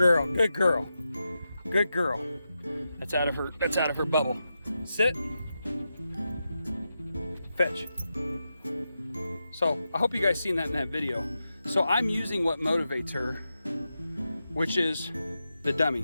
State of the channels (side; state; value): both; inverted; correlation -0.89